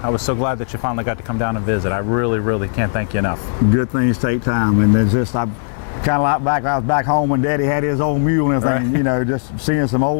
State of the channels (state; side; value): silent; right; digital silence